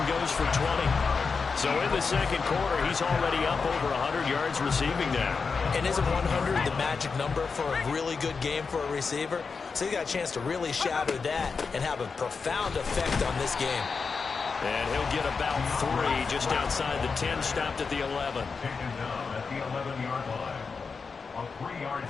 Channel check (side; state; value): right; quieter; 5.0 dB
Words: goes for 20. So in the second quarter, he's already up over 100 yards receiving now. And isn't 100 the magic number for a really good game for a receiver? So he got a chance to really shatter that and have a profound effect on this game. And he'll get about 3 just outside the 10, stopped at the 11. Taken down at the 11-yard line. A 3-yard